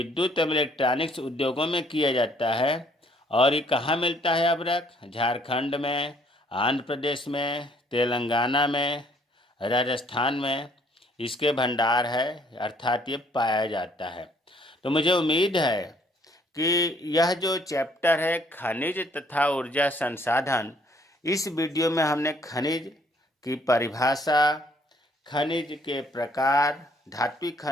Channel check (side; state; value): both; normal; correlation 0.63